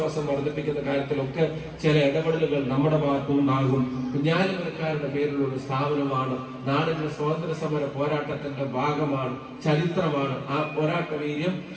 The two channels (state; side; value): identical; both; correlation 1.00